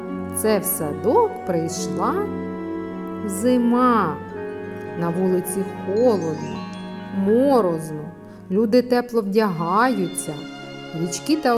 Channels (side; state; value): both; identical; correlation 1.00